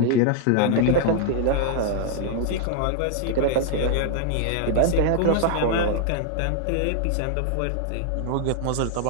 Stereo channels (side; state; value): both; different; correlation 0.00